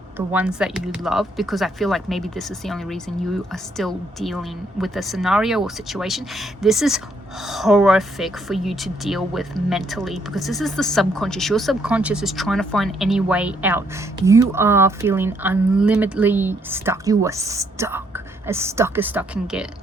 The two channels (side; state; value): both; normal; correlation 0.71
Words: ones that you love, because I feel like maybe this is the only reason you are still dealing with a scenario or situation. This is horrific for you to deal with mentally, because this is the subconscious. Your subconscious is trying to find any way out. You are feeling unlimitedly stuck. You are stuck as stuck can get.